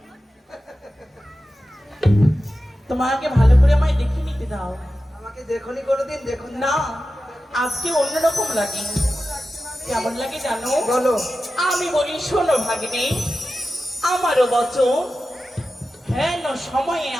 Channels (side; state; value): both; normal; correlation 0.93